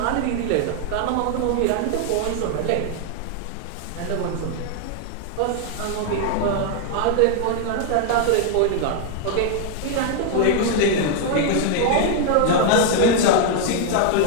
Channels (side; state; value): both; different; correlation 0.00